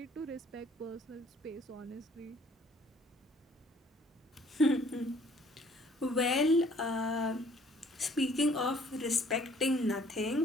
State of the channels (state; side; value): normal; both; correlation 0.58